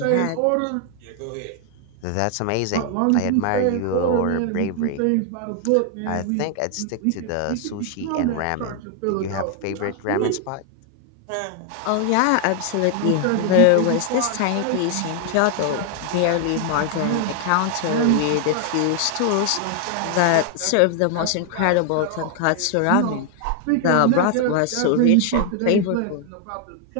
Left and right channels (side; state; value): both; different; correlation 0.00